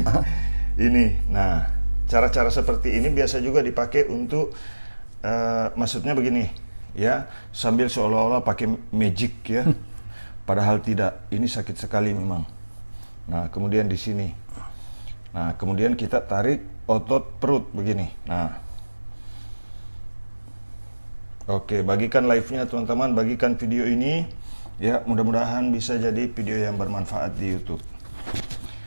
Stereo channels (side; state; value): both; inverted; correlation -1.00